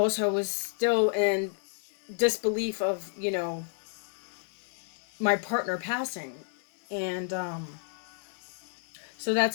I was still in disbelief of my partner passing. And so that's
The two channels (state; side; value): silent; right; digital silence